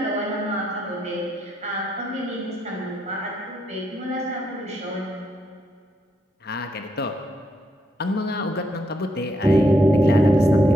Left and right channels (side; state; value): both; normal; correlation 0.77